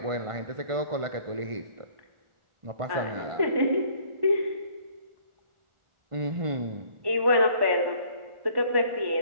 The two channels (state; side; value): late; left; 1.5 ms